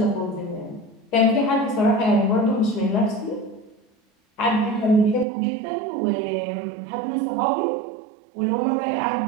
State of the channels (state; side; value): drops out; left; at 5.2 s